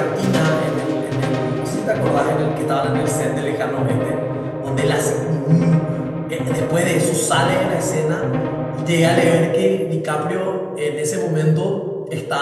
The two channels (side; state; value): both; identical; correlation 1.00